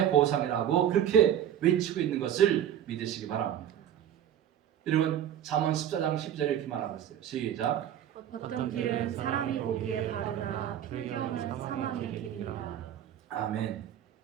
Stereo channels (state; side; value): quieter; left; 10.2 dB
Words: 보상이라고 그렇게 외치고 있는 것을 믿으시기 바랍니다. 여러분 잠언 14장 10절에 이렇게 말하고 있어요. 시작. 어떤 길은 사람이 보기에 바르나 필경은 사망의 길이니라. 아멘.